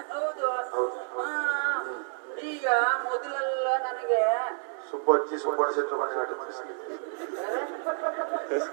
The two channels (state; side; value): silent; left; 58 dB below the other